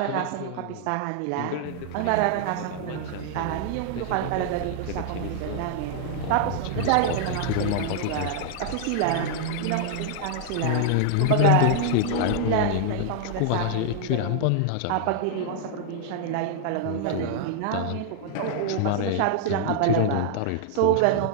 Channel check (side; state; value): both; different; correlation -0.01